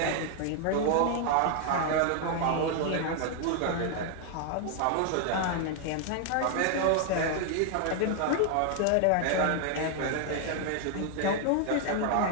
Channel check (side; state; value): both; different; correlation 0.00